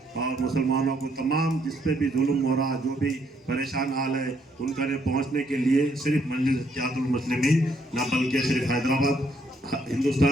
और मुसलमानों को, तमाम जिस पे भी जुल्म हो रहा, जो भी परेशान हाल है, उनका ने पहुँचने के लिए सिर्फ मजलिस इत्तेहादुल मुस्लिमीन ना बल्कि सिर्फ हैदराबाद,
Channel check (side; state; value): both; normal; correlation 0.71